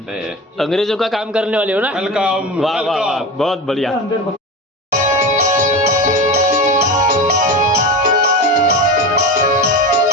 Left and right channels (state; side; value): normal; both; correlation 0.25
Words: अंग्रेजों का काम करने वाले हो ना? वेलकम. वाह वाह वाह, बहुत बढ़िया.